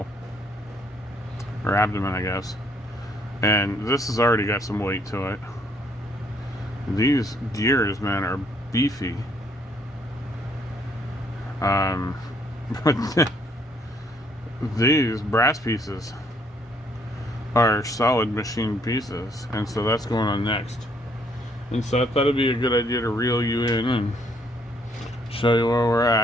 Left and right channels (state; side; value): normal; both; correlation 0.67